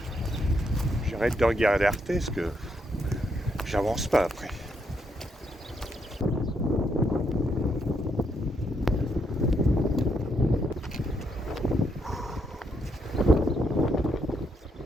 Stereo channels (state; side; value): normal; both; correlation 0.77